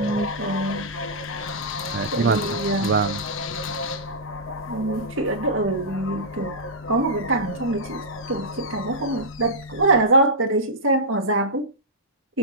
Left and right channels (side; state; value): both; normal; correlation -0.14